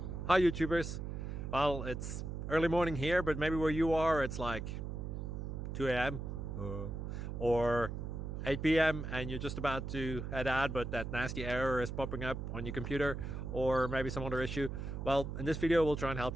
Hi YouTubers. Well, it's early morning here, but maybe where you are it's like 2 a.m. Or 8 p.m. and you're just about to head out, but that nasty error is popping up on your computer, or maybe some other issue. Well, in this video we'll try and help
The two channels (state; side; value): noise; right; hum, 5 dB below the sound